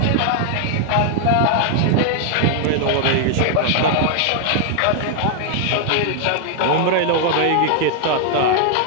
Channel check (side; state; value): both; different; correlation 0.00